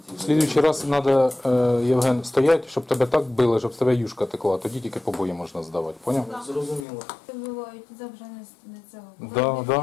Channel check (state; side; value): drops out; right; at 6.9 s